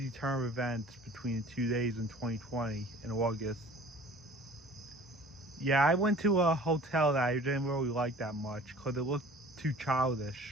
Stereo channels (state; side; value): normal; both; correlation 0.47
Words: turn of events between the 2 days in 2020 in August. Yeah, I went to a hotel that I didn't really like that much because it looked too